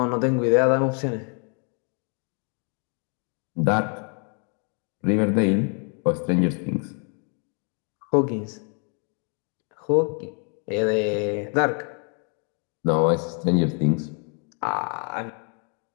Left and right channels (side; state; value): right; quieter; 39.9 dB